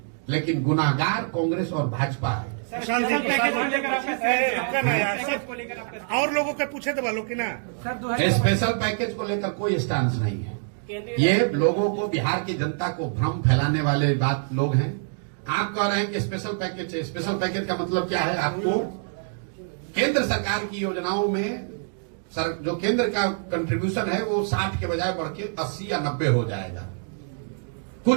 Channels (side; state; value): left; silent; digital silence